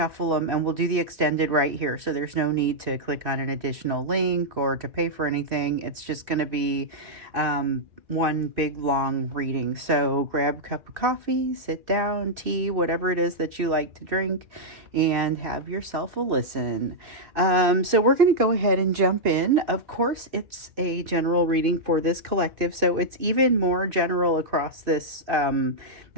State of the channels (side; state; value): left; late; 2.6 ms